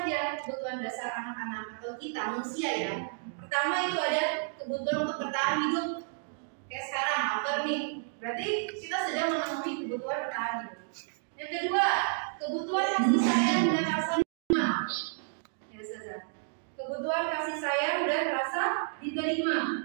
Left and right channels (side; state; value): left; silent; digital silence